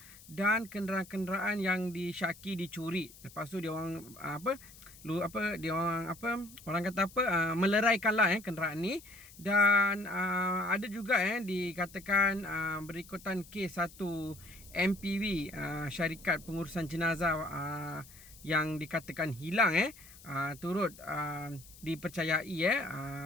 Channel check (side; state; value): left; noise; hiss, 20 dB below the sound